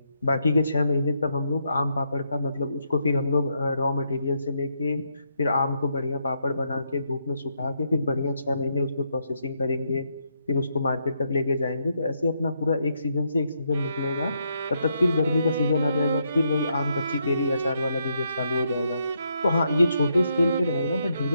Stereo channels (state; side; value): inverted; both; correlation -0.78